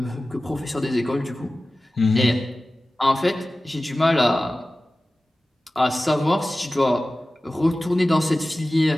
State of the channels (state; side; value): normal; both; correlation 0.96